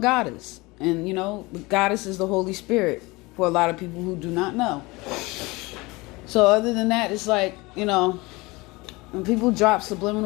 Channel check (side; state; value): right; quieter; 23.3 dB